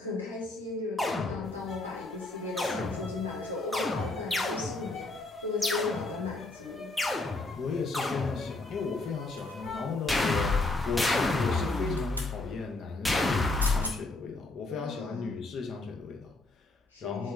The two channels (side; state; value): right; quieter; 3.1 dB